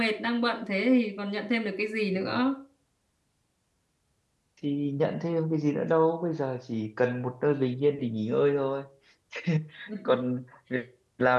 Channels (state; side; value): identical; both; correlation 1.00